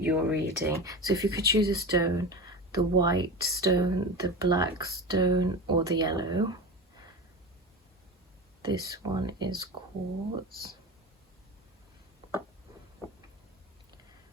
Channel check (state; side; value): normal; both; correlation 0.27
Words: reading. So if you could choose a stone, the white stone, the black stone, or the yellow. This one is quartz.